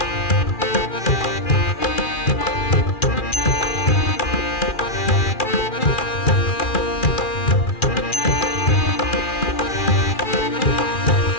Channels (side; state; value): right; late; 2.4 ms